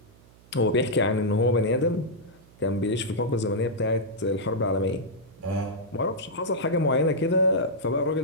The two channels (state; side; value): noise; right; hum, 26 dB below the sound